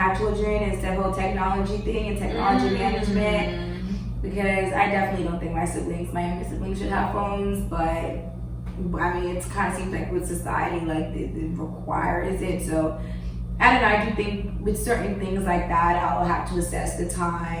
children. Is the whole technology thing and technology management. Because I definitely don't think my younger siblings should have phones, but I mean, it kind of seems like with society, like it requires it. So I don't know, I do think with certain things like that, I'll have to assess the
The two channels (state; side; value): identical; both; correlation 1.00